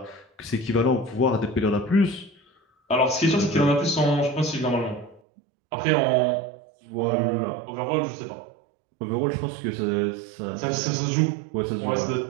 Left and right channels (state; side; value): drops out; left; at 5.2 s